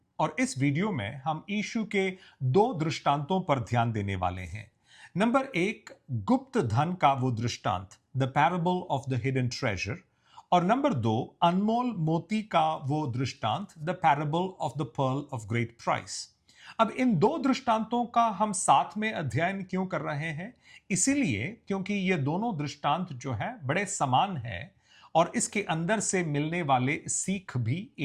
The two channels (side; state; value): both; identical; correlation 1.00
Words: और इस वीडियो में हम यीशु के दो दृष्टांतों पर ध्यान देने वाले हैं। नंबर एक, गुप्त धन का वो दृष्टांत, the parable of the hidden treasure. और नंबर दो, अनमोल मोती का वो दृष्टांत, the parable of the pearl of great price. अब इन दो दृष्टांतों का हम साथ में अध्ययन क्यों कर रहे हैं? इसीलिए क्योंकि ये दोनों दृष्टांत जो है बड़े समान है और इसके अंदर से मिलने वाले सीख भी